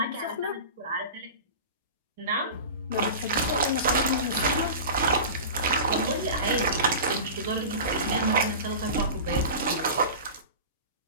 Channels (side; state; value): both; inverted; correlation -0.32